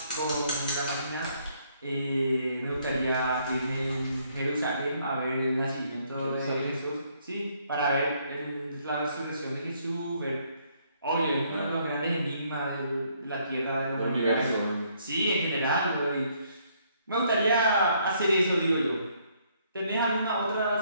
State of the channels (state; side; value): inverted; both; correlation -0.68